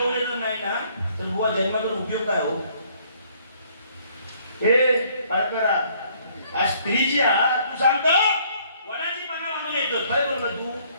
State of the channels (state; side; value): inverted; both; correlation -0.63